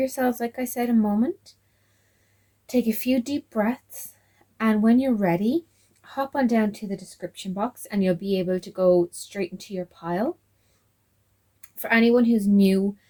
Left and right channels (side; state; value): both; identical; correlation 1.00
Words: like I said, a moment. Take a few deep breaths, and when you're ready, hop on down to the description box and you'll be able to go straight into your pile. For anyone who's new